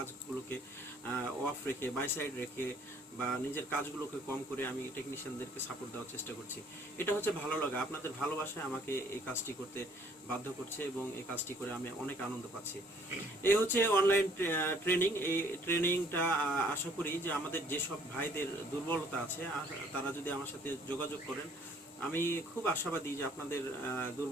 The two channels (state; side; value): normal; both; correlation 0.59